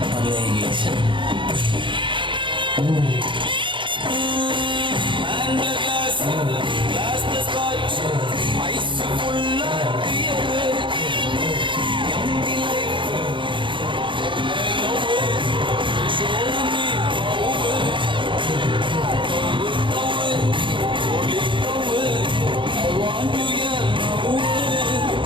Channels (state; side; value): late; left; 0.24 ms